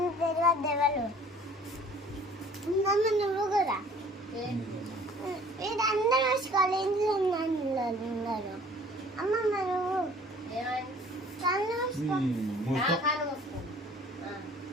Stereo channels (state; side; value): normal; both; correlation 0.52